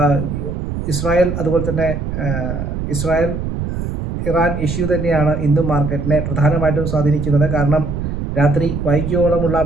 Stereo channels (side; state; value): right; noise; rumble, 4 dB below the sound